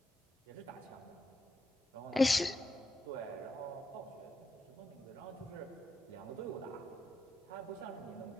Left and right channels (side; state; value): both; normal; correlation 0.83